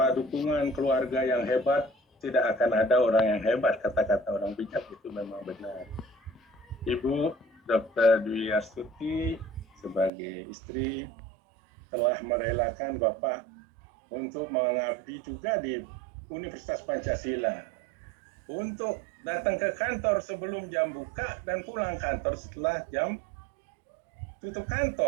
dukungan keluarga yang hebat, tidak akan ada orang yang hebat, kata-kata orang bijak itu memang benar. Ibu Dr. Dwi Astuti sebagai istri telah merelakan Bapak untuk mengabdi juga di Universitas Pancasila, untuk datang ke kantor sebelum jam buka dan pulang kantor setelah jam tutup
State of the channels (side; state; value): left; drops out; at 10.1 s